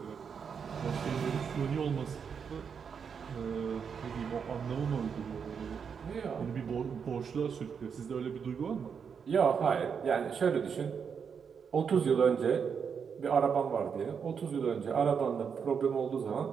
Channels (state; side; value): quieter; left; 6.6 dB